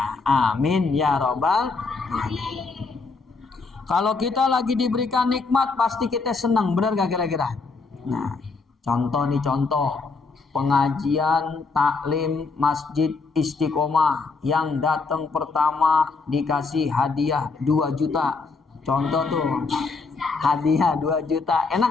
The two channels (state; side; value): quieter; right; 4.3 dB